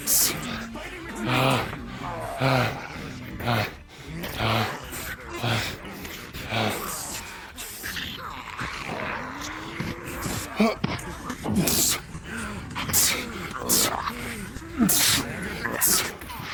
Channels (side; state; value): both; identical; correlation 1.00